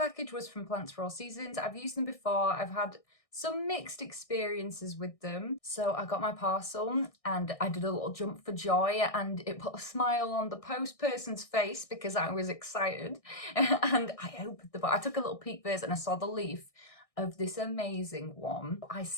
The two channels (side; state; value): right; late; 1.6 ms